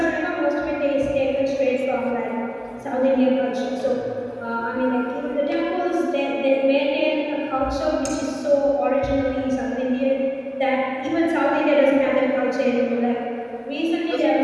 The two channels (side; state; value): both; identical; correlation 1.00